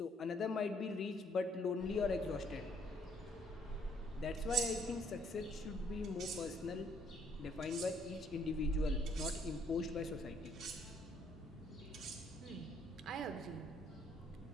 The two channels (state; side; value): normal; both; correlation 0.66